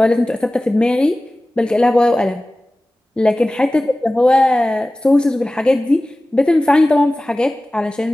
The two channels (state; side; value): normal; both; correlation 0.97